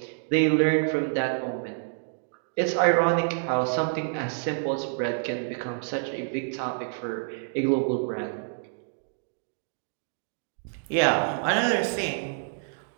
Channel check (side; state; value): left; silent; digital silence